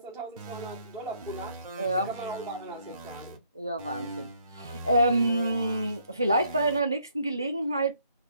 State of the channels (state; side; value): inverted; both; correlation -0.68